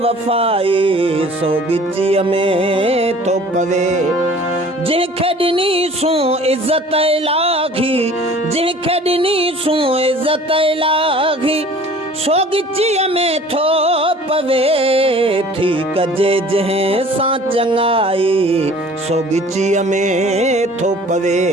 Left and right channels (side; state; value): both; normal; correlation 0.48